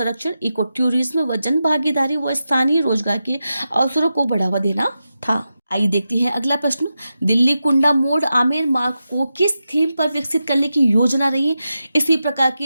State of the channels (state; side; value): inverted; both; correlation -0.90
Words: इको टूरिज्म व जन भागीदारी व स्थानीय रोजगार के अवसरों को बढ़ावा देना था। आइए देखते हैं अगला प्रश्न। दिल्ली कुंडा मोड़ आमेर मार्ग को किस थीम पर विकसित करने की योजना रही है? इसी प्रकार